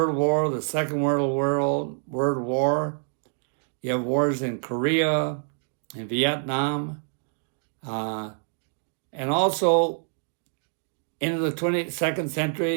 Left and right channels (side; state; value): left; silent; digital silence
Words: War, the Second World War. You have wars in Korea, in Vietnam, and also into the 22nd